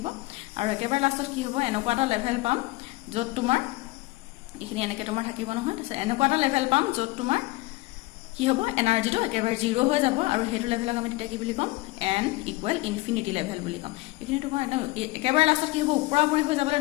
আৰু একেবাৰে লাষ্টত কি হ'ব এনেকুৱা এটা লেভেল পাম য'ত তোমাৰ এইখিনি এনেকৈ তোমাৰ থাকিব নহয় তাৰপিছত এনেকুৱা এটা লেভেল পাম য'ত তোমাৰ কি হ'ব এনাৰ্জিটো একেবাৰে 0 হৈ যাব আৰু হেতু লেভেলক আমি তেতিয়া কি বুলি কম n ইকুৱেল ইনফিনিটি লেভেল বুলি কম এইখিনি তোমাৰ একেবাৰে লাষ্টত কি হ'ব ওপৰাপৰি হৈ যাবলৈ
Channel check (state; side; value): quieter; right; 21.1 dB